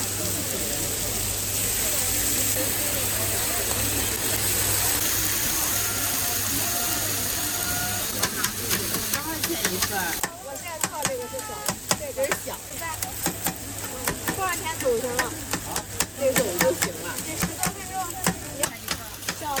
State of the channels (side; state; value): both; identical; correlation 1.00